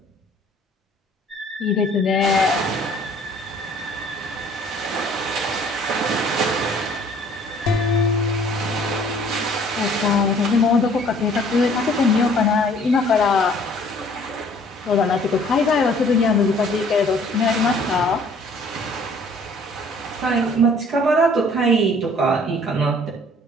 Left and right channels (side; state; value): both; normal; correlation 0.56